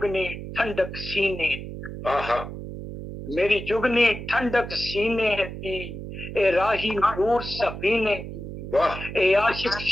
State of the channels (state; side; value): noise; right; hum, 9 dB below the sound